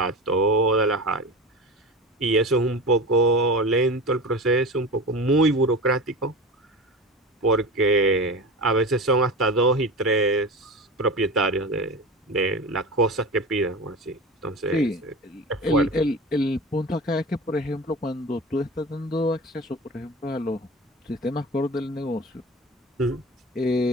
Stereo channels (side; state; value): both; normal; correlation 0.30